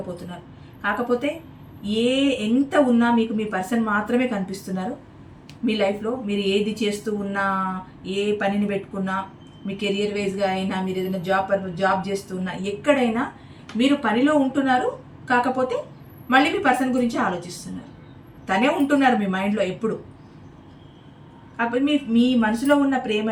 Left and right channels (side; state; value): both; identical; correlation 1.00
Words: కాకపోతే ఎంత ఉన్నా మీకు మీ పర్సన్ మాత్రమే కనిపిస్తున్నారు. మీ లైఫ్లో మీరు ఏది చేస్తూ ఉన్నా, ఏ పనిని పెట్టుకున్నా, మీ కెరియర్ వైజ్గా అయినా, మీరు ఏదైనా జాబ్ చేస్తూ ఉన్నా, ఎక్కడైనా మీరు పనిలో ఉంటున్నారు. కాకపోతే మళ్ళీ మీ పర్సన్ గురించి ఆలోచిస్తున్నారు. తనే ఉంటున్నారు మీ మైండ్లో ఎప్పుడు. కాకపోతే మీ మనసులో ఉన్న